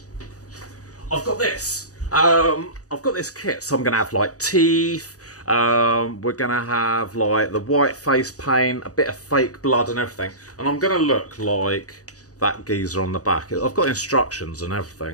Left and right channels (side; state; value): right; late; 0.67 ms